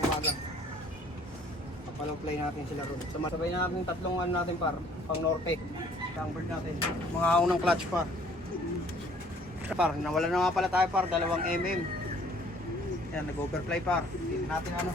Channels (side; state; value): both; normal; correlation 0.57